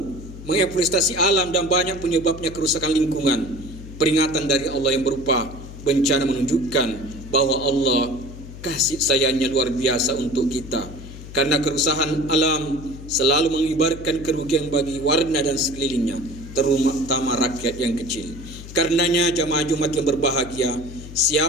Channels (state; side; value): noise; left; hum, 13 dB below the sound